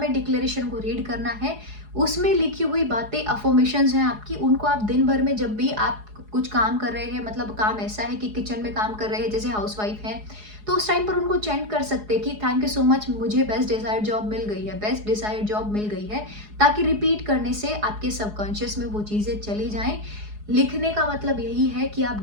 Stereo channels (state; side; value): late; left; 4.8 ms